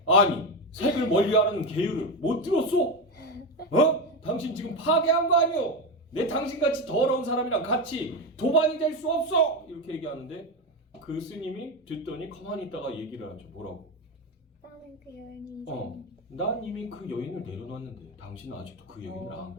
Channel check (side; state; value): both; normal; correlation 0.14